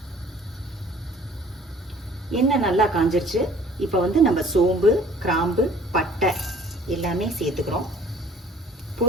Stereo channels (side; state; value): both; normal; correlation 0.53